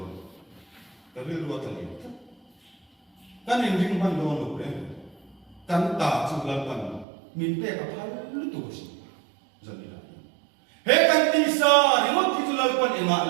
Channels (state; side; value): drops out; left; at 7.1 s